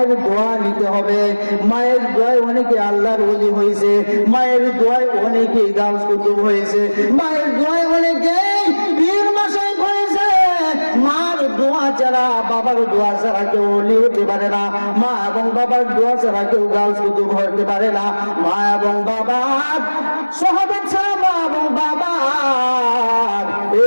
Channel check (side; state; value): both; inverted; correlation -1.00